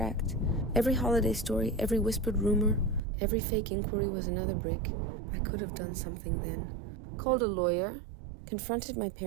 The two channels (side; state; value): left; drops out; at 3.0 s